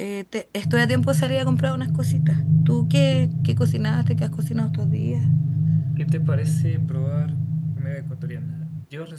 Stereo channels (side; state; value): both; identical; correlation 1.00